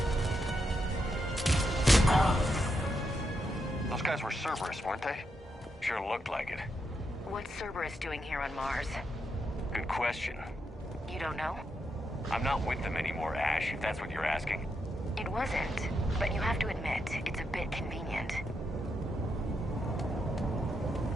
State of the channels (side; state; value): both; normal; correlation 0.83